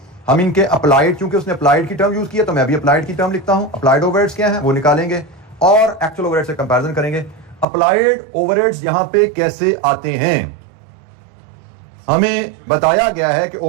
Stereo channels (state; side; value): drops out; left; at 7.7 s